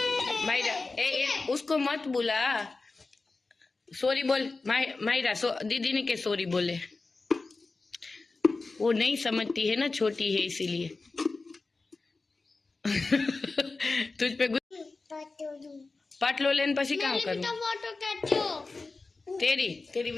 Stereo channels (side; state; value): right; quieter; 3.7 dB